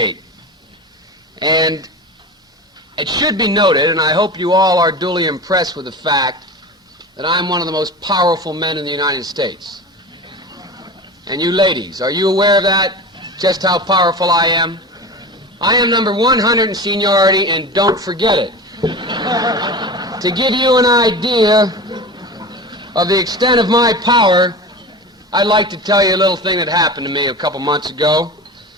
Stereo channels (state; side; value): normal; both; correlation 0.31